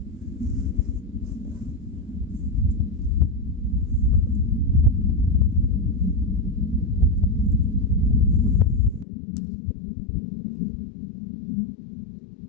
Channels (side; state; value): right; drops out; at 9.1 s